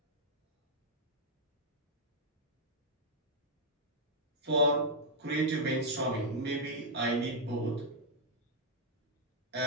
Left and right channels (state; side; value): normal; both; correlation -0.05